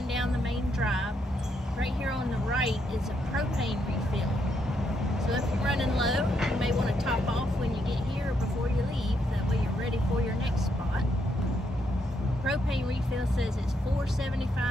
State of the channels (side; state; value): both; normal; correlation 0.77